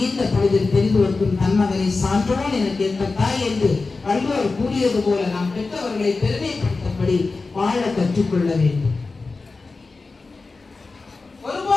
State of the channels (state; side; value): quieter; right; 3.9 dB